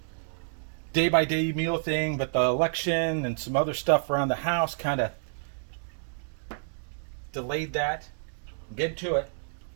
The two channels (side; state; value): left; silent; digital silence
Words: day-by-day meal thing, but the election and some other stuff around the house kind of delayed that. Get to it.